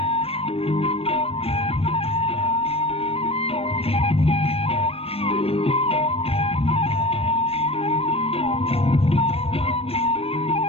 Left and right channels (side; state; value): right; late; 0.28 ms